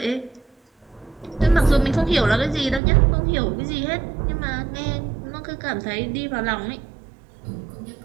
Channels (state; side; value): drops out; left; at 2.8 s